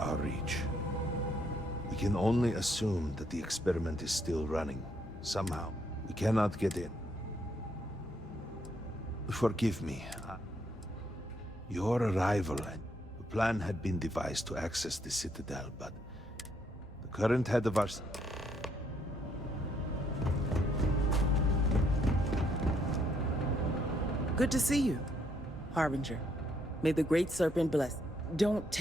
reach. We can only assume that the experiment is still running. Somehow, we cannot get in. Forgive me. Your arrival, the plan had been devised to access the Citadel, but the current head of our... Good to see you, Harbinger. May the Great Serpent bless. Don't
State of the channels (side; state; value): both; normal; correlation 0.72